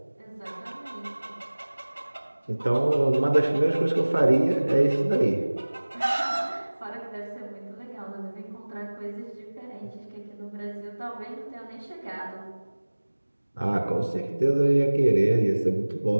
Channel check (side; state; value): both; inverted; correlation -1.00